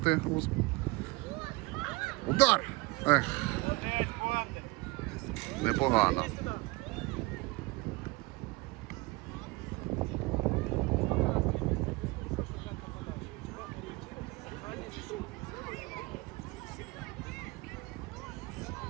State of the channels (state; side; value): quieter; left; 23.2 dB